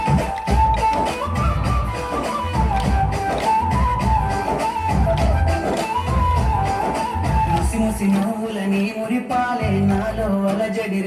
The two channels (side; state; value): both; identical; correlation 1.00